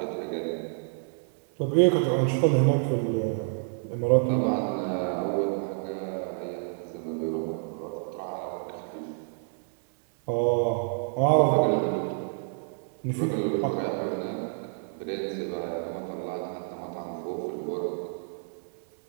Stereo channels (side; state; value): left; silent; 59 dB below the other